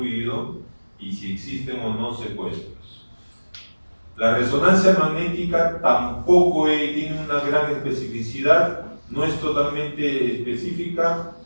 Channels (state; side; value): inverted; both; correlation -1.00